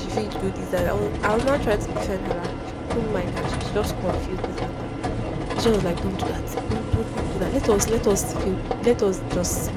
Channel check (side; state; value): both; identical; correlation 1.00